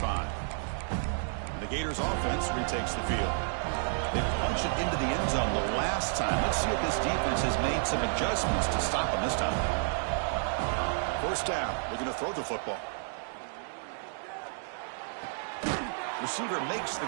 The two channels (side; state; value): left; silent; digital silence